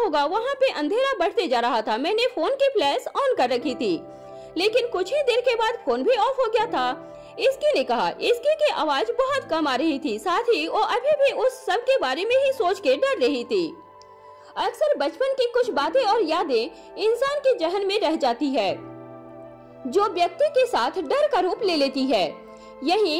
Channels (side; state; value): both; identical; correlation 1.00